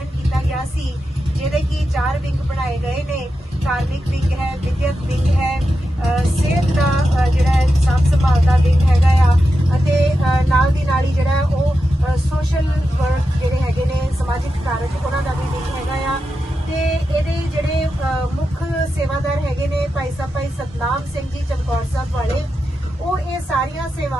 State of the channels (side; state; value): both; normal; correlation 0.89